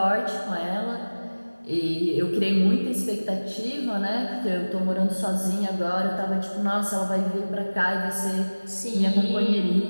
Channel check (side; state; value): both; inverted; correlation -1.00